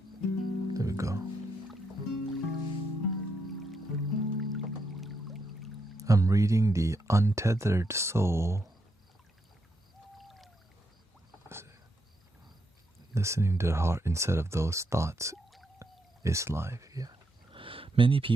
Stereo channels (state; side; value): normal; both; correlation 0.80